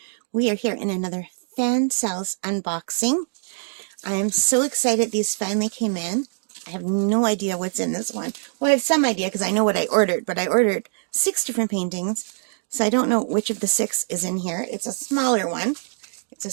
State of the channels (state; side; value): silent; left; digital silence